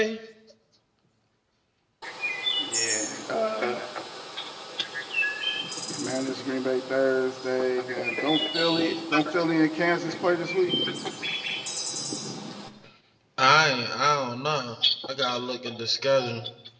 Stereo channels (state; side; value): identical; both; correlation 1.00